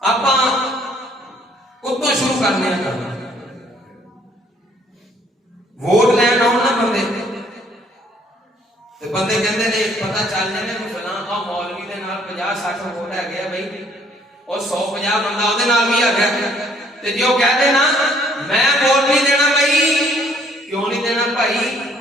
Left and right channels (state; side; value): normal; both; correlation 0.62